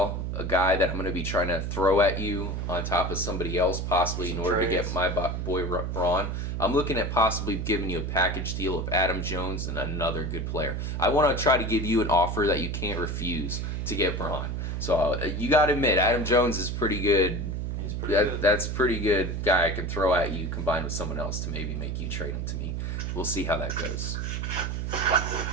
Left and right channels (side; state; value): right; noise; hum, 2 dB below the sound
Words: a guy that I'm going to be trying to throw at you on top of somebody else, possibly in order to get my boy Braun. I'm looking at possibly giving you a package deal of Adam Jones and another good player. I want to try to give you an offer that you can't refuse to get Braun. So you got to admit, Adam Jones is pretty good. He's pretty good. That's pretty good guy I can throw at you combined with someone else to maybe make you trade him to me. We'll see how that goes.